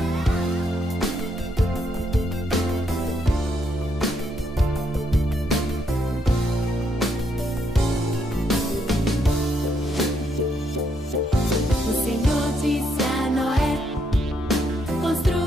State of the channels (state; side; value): normal; both; correlation 0.75